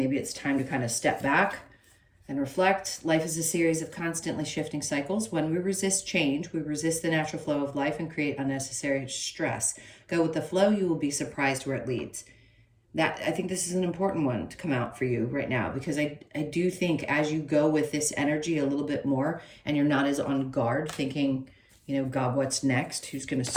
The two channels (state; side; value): identical; both; correlation 1.00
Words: it's time to kind of step back and reflect. Life is a series of constantly shifting cycles. When we resist change, we resist the natural flow of life and create unnecessary stress. Go with the flow, you will be surprised where it leads. I think this is an important one to come out for you right now, because I do think as you go with this energy a little bit more and you're not as on guard thinking, God, what's next? Who's going to